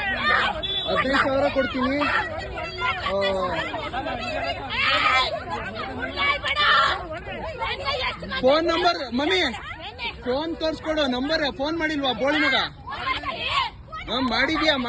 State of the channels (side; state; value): both; identical; correlation 1.00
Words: 15,000 ಕೊಡ್ತೀನಿ. ಫೋನ್ ನಂಬರ್ ಮಮ್ಮಿ, ಫೋನ್ ತೋರ್ಸ್ಕೊಡು. ನಂಬರ್ ಫೋನ್ ಮಾಡಿಲ್ವಾ ಬೋಳಿ ಮಗ?